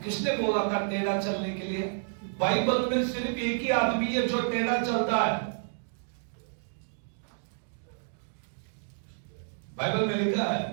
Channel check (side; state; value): left; silent; digital silence